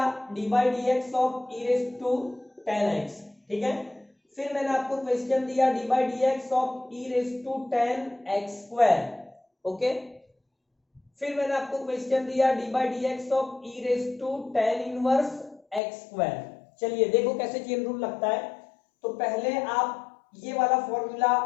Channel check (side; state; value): right; drops out; at 15.8 s